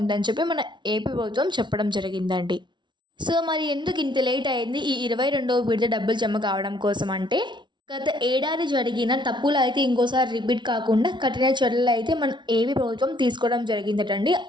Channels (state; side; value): late; left; 0.23 ms